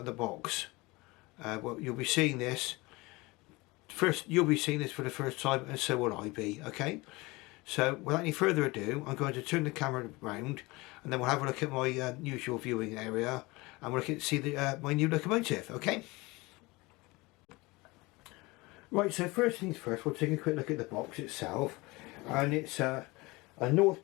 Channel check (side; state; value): right; quieter; 23.1 dB